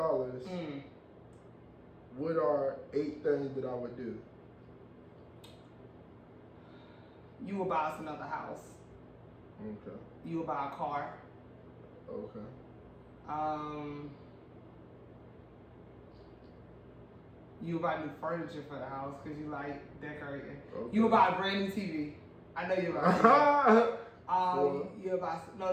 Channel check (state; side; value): identical; both; correlation 1.00